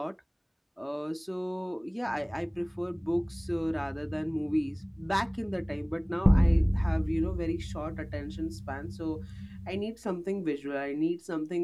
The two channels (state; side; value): identical; both; correlation 1.00